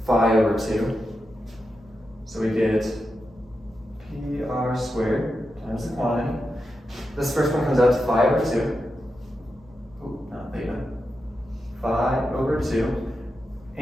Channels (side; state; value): both; normal; correlation 0.89